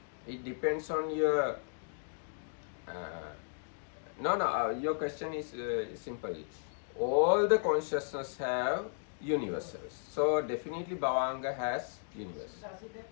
It depends on your your question is simple. All the consciousness have universals. So definitely Bhavanga has universals. Does it have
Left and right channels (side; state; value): right; silent; digital silence